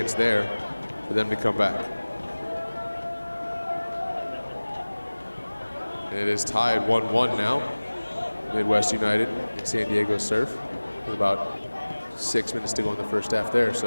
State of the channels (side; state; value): both; inverted; correlation -1.00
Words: there for them to come back. And it is tied 1-1 now. Midwest United and San Diego Surf with about 6 minutes to go in the first half there.